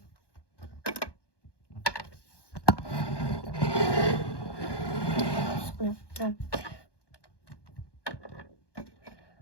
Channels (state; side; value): late; right; 1.2 ms